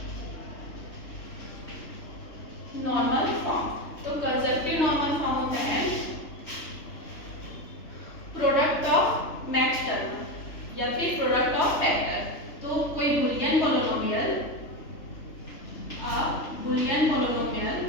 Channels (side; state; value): right; late; 3.4 ms